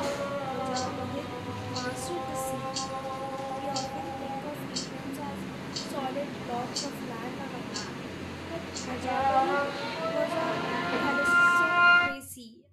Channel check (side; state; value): both; identical; correlation 1.00